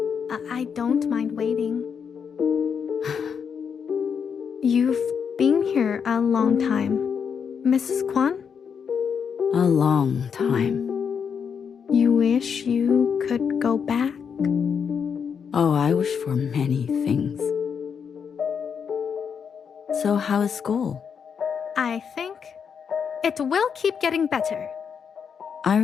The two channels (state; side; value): quieter; right; 6.8 dB